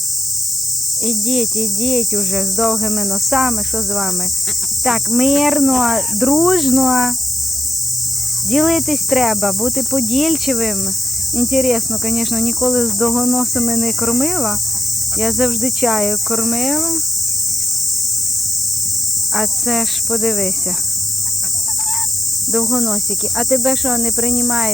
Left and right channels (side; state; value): both; normal; correlation 0.87